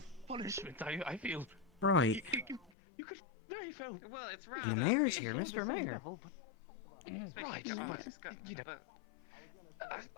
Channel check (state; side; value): drops out; right; at 2.7 s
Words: punishment. I feel. Right. You could very well, it's The mayor's here, Mr. Mayor. Right, but you know,